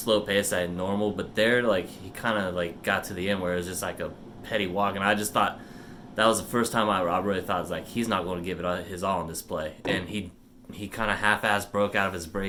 pace at normal, but there, he kind of, got to the end where it was just like a petty walk, and I just thought that was the first time I really thought, he's not going to give it his all on this play. And he kind of half-assed broke out of his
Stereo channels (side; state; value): both; identical; correlation 1.00